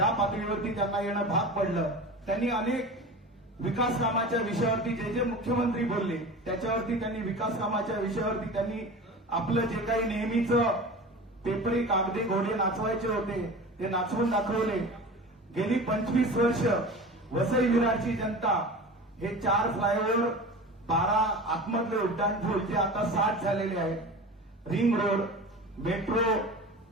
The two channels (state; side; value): normal; both; correlation 0.34